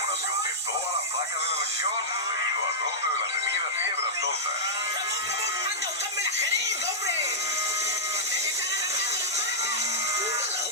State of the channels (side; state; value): both; normal; correlation -0.10